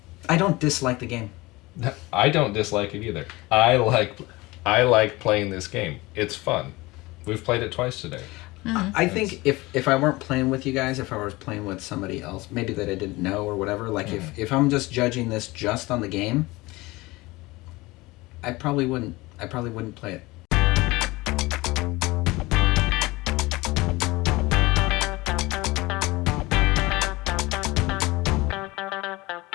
I don't dislike the game. I don't dislike it either. I like playing this game. It's fun. We've played it twice today. I think if I weren't playing with you guys, if I was playing with somebody else, maybe that I didn't know or whatever, like if I'm just judging this just on the game, I probably wouldn't play it.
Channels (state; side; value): quieter; right; 21.5 dB